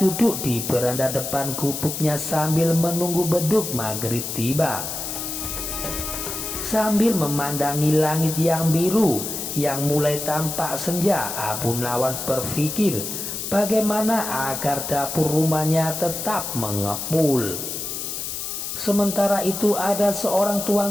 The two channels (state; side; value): noise; left; hiss, 5 dB below the sound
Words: di beranda depan gubuknya sambil menunggu beduk maghrib tiba. Sambil memandangi langit yang biru yang mulai tampak senja, Abu Nawas berpikir bagaimana agar dapur rumahnya tetap mengepul. Sementara itu ada seorang